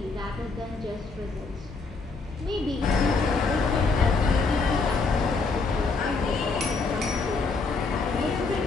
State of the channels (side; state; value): right; quieter; 4.1 dB